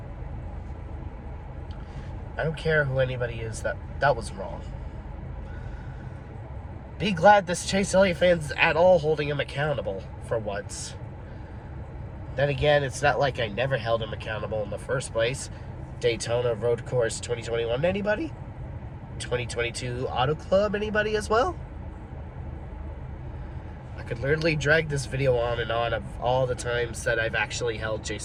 I don't care who anybody is, that was wrong. Be glad this Chase Elliott fan's at all holding him accountable for once. Then again, it's not like I never held him accountable in the first place. Daytona Road Course 2021, anybody? 2022 Auto Club, anybody as well? I could literally drag this video on and on of all the times that I've actually held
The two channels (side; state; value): both; identical; correlation 1.00